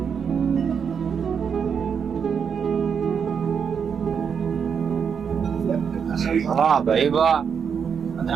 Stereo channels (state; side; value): quieter; left; 6.9 dB